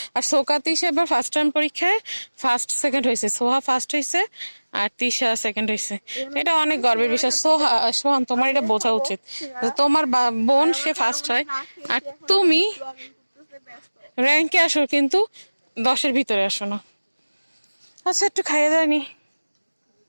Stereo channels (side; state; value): both; inverted; correlation -1.00